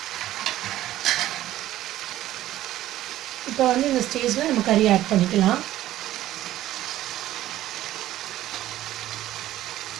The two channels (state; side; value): quieter; left; 14.0 dB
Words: இப்போ இந்த ஸ்டேஜில் நம்ம கறி ஆட் பண்ணிக்கலாம்.